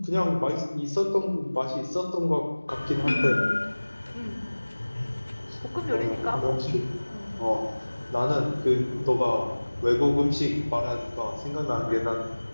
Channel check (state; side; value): inverted; both; correlation -1.00